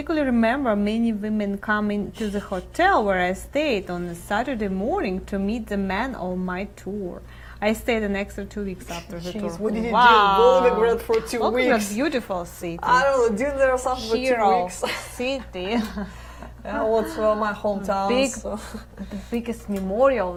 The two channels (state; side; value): identical; both; correlation 1.00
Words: remember many women coming to the hotel where I stayed on a Saturday morning to meet the man on my tour. I stayed an extra 2 weeks after the tour. Jeez, what did you Wow. do? Volgograd for 2 Volgograd, weeks. beautiful city. I don't know, did there something for 2 Hero weeks? city. Yeah, what's my hometown? Big, so. the biggest